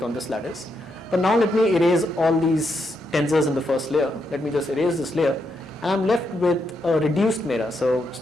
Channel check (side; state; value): both; normal; correlation 0.80